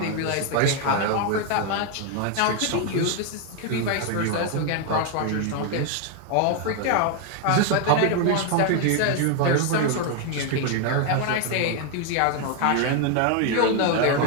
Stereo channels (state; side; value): different; both; correlation 0.01